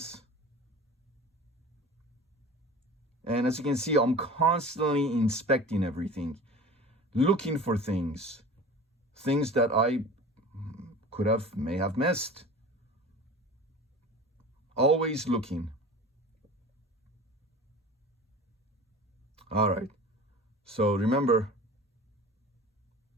And as you can see, I'm constantly inspecting everything, looking for things that I may have missed. Always looking. All right, so remember,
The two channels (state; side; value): normal; both; correlation 0.38